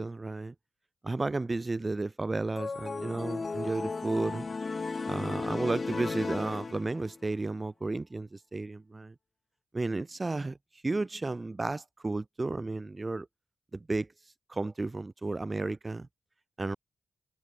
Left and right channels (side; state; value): both; normal; correlation 0.97